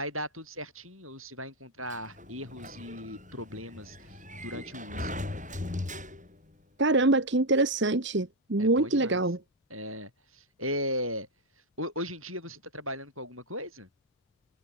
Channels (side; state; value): both; normal; correlation 0.02